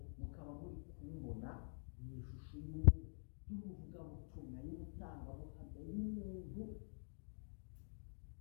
mukaba muri kumbona mu ishusho y'umuvugabutumwa, y'umutangabuhamya, y'umuntu.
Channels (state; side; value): silent; right; digital silence